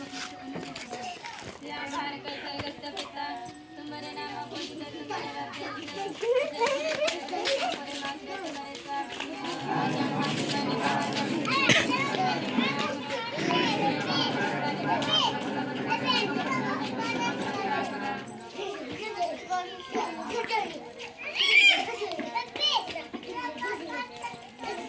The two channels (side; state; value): both; identical; correlation 1.00